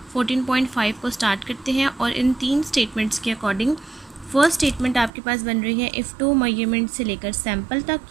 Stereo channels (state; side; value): drops out; left; at 5.1 s